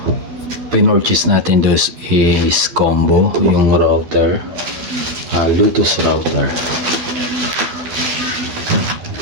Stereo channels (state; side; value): late; left; 12 ms